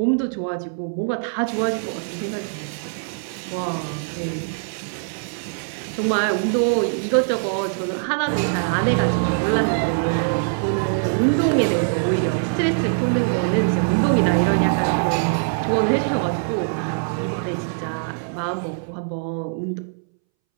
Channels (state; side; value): silent; left; 64 dB below the other